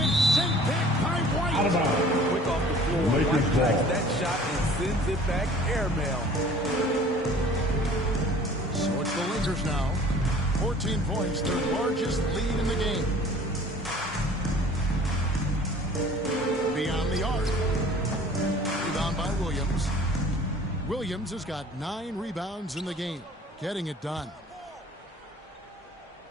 sent back by White. Out of bounds. Quick off the floor. Lakers White tracks ball. that shot and sends it back airmail. So it's the Lakers now. 14 points, their largest lead in the game. Beyond the arc. Rebound by Williams. Williams has got 9 rebounds in the game. Getting it done.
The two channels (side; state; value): both; normal; correlation 0.49